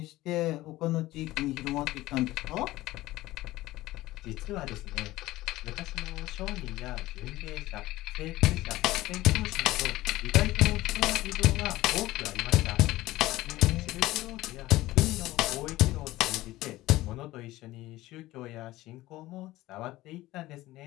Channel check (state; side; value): quieter; right; 17.4 dB